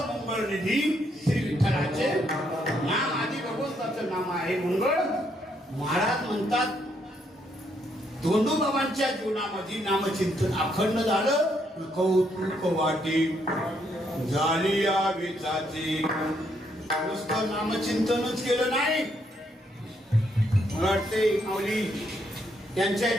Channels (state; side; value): normal; both; correlation 0.74